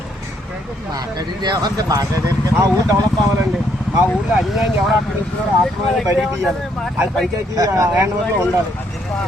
మా ఊరు డెవలప్ అవ్వాలండి. మా ఊర్లో అన్యాయం ఎవరు ఆక్రమిస్తున్నారో ఆత్మని బయటికి తీయాలి. అది పంచాయతీ హ్యాండ్ఓవర్లో ఉండాలి.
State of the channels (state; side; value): normal; both; correlation 0.71